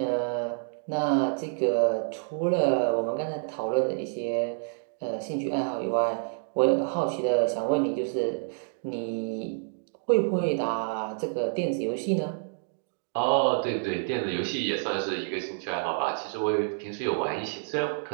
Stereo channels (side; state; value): left; silent; digital silence